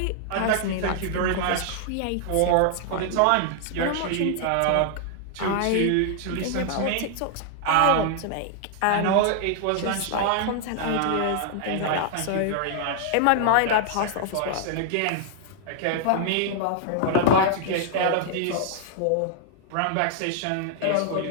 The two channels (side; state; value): both; different; correlation 0.00